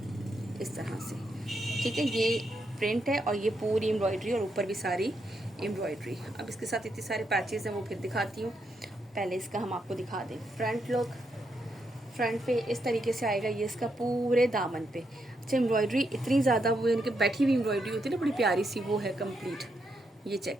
इस तरह से, ठीक है। ये प्रिंट है और ये पूरी एम्ब्रॉयडरी और ऊपर भी सारी एम्ब्रॉयडरी। अब इसके साथ इतने सारे पैचेस हैं वो फिर दिखाती हूँ। पहले इसका हम आपको दिखा दें फ्रंट लुक। फ्रंट पे इस तरीके से आएगा ये इसका पूरे दामन पे। अच्छा, एम्ब्रॉयडरी इतनी ज़्यादा वो इनके बैठी हुई एम्ब्रॉयडरी होती है ना, बड़ी प्यारी सी, वो है कंप्लीट। ये चेक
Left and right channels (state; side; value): normal; both; correlation 0.80